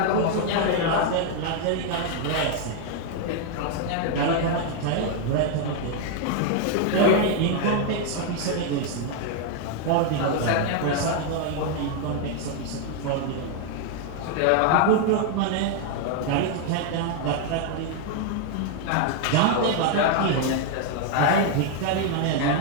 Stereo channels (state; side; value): different; both; correlation 0.00